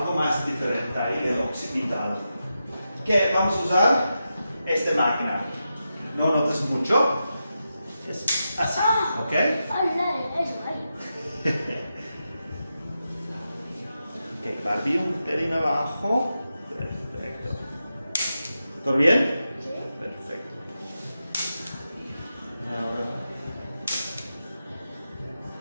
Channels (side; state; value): both; inverted; correlation -0.89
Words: más diferente ahí, el occipital. ¿Qué? Vamos a usar esta máquina. No notas mucho. Es así, ¿ok? ¡Ay, eso, ay! Ok, Barbie un pelín abajo. Perfecto. ¿Todo bien? ¿Sí? Perfecto. Ahora.